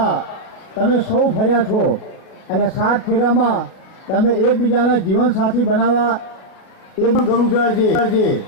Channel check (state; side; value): late; right; 37 ms